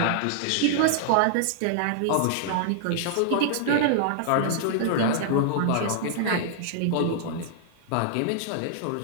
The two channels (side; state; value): both; different; correlation -0.01